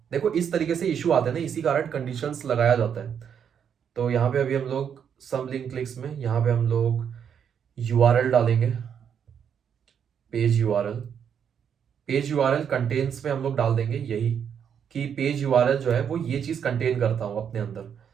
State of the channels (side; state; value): left; quieter; 7.9 dB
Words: देखो इस तरीके से इशू आते हैं ना, इसी कारण कंडीशंस लगाया जाता है। तो यहाँ पे अभी हम लोग सम लिंक क्लिक्स में यहाँ पे हम लोग यूआरएल डालेंगे, page URL, page URL contents में हम लोग डाल देंगे यही कि पेज यूआरएल जो है वो ये चीज कंटेन करता हूं अपने अंदर।